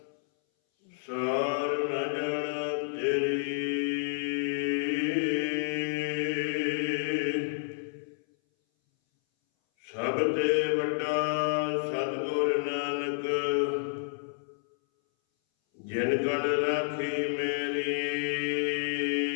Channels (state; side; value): silent; right; 58 dB below the other